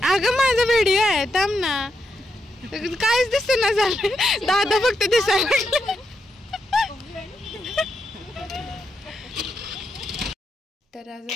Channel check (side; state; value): both; normal; correlation 0.83